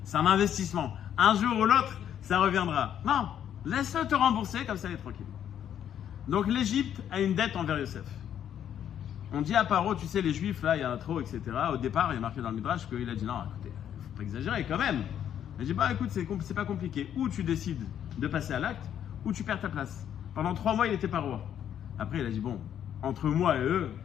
c'est un investissement. Un jour ou l'autre, ça reviendra. Non, laisse-le te rembourser, comme ça, il est tranquille. Donc, l'Égypte a une dette envers Yosef. On dit à Paro, tu sais, les Juifs, là, il y en a trop, etc. Au départ, il est marqué dans le Midrash qu'il a dit non, écoutez, il ne faut pas exagérer quand même. Il dit, écoute, c'est pas compliqué. Ou tu décides de passer à l'acte, ou tu perds ta place. Pendant 3 mois, il n'était pas roi. Après, il a dit, bon, entre moi et eux,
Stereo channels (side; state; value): right; quieter; 9.8 dB